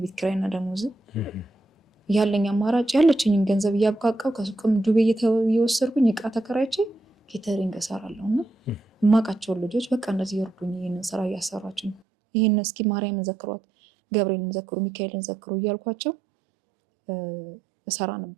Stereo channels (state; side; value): drops out; left; at 12.0 s